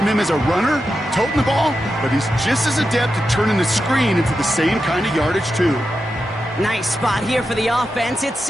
him as a runner, toting the ball, but he's just as adept at turning the screen into the same kind of yardage, too. Nice spot here for the offense. It's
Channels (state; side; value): normal; both; correlation 0.89